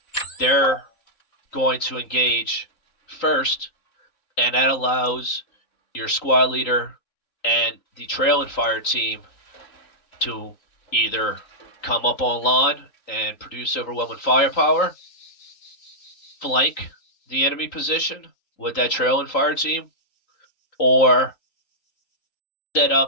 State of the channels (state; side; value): late; right; 3.8 ms